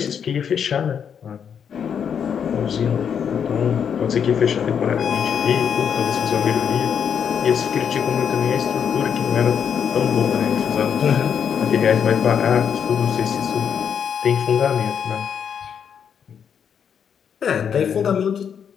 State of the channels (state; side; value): quieter; right; 7.7 dB